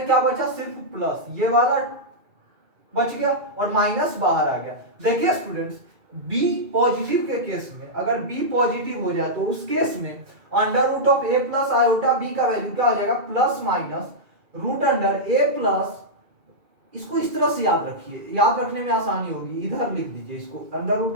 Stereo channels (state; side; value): late; left; 2.4 ms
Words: क्या बचा, सिर्फ प्लस, ये वाला बच गया और माइनस बाहर आ गया। देखिए स्टूडेंट्स बी पॉजिटिव के केस में, अगर बी पॉजिटिव हो जाए तो उस केस में under root of a plus iota b का वैल्यू क्या हो जाएगा, plus minus root under a plus, इसको इस तरह से याद रखिए, याद रखने में आसानी होगी, इधर लिख दीजिए इसको, under